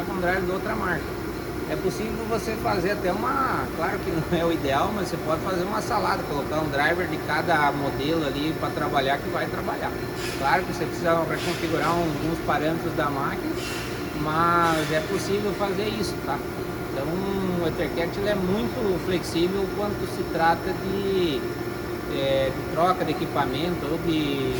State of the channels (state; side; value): identical; both; correlation 1.00